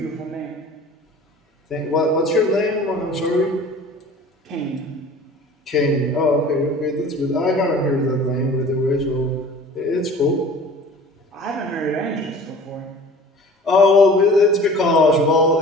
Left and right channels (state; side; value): normal; both; correlation 0.44